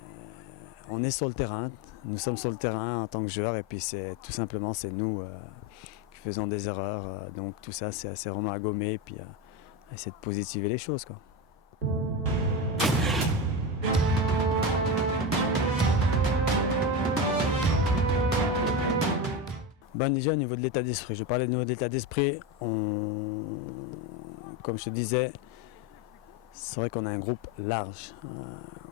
on est sur le terrain. Nous sommes sur le terrain en tant que joueurs, et puis c'est tout simplement nous qui faisons des erreurs. Donc tout ça, c'est vraiment à gommer, et puis essayer de positiver les choses, quoi. Déjà au niveau de l'état d'esprit, je parlais de niveau de l'état d'esprit, comme je te disais, c'est vrai qu'on a un groupe large,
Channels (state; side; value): normal; both; correlation 0.18